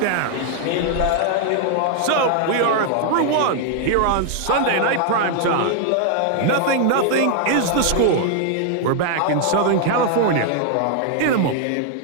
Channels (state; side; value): different; both; correlation 0.00